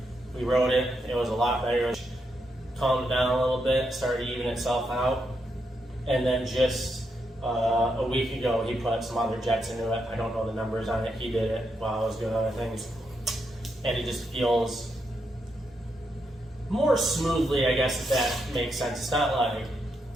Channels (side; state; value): both; normal; correlation 0.81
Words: we rode it, it was a lot better. Calmed down a little bit, started evening itself out, and then just a week ago he put some other jets into it. I don't know the numbers on it. He did it while I was doing other things, and it just feels more smoothly, I guess, if that makes sense. It's not like,